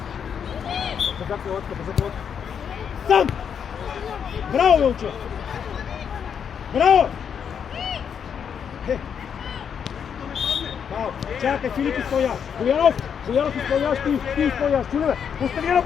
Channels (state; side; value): quieter; right; 7.6 dB